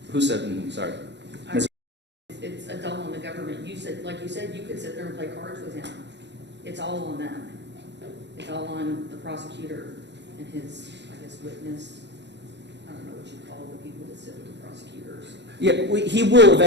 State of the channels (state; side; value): late; left; 0.51 ms